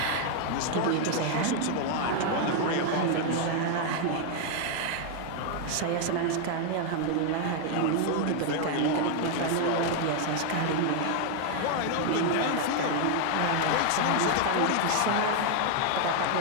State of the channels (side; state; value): both; different; correlation 0.00